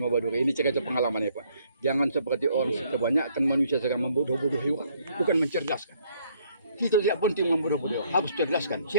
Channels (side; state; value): both; inverted; correlation -0.65